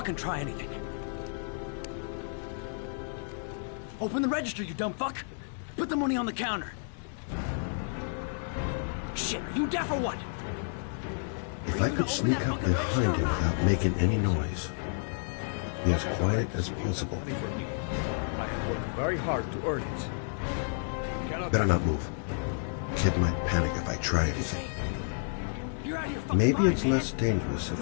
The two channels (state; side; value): silent; right; digital silence